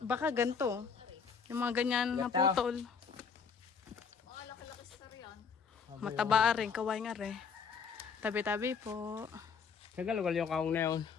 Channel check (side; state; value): right; quieter; 6.0 dB